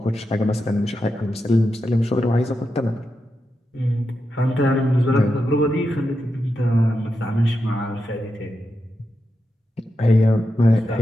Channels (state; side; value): normal; both; correlation 0.87